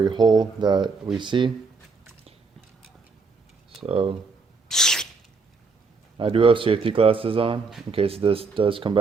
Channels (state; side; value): quieter; left; 4.5 dB